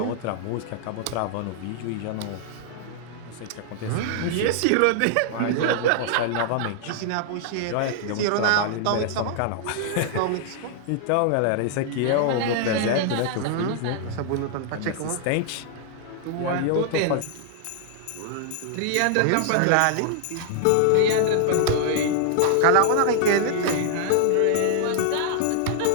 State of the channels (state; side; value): different; both; correlation -0.01